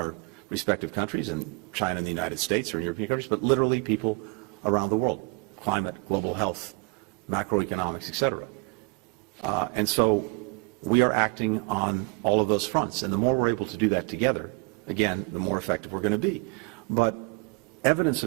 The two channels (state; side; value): quieter; left; 30.6 dB